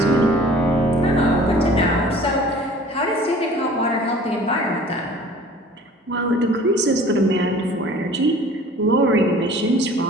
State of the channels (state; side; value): normal; both; correlation 0.48